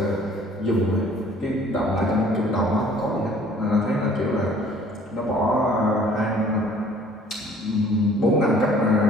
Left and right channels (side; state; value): both; normal; correlation 0.54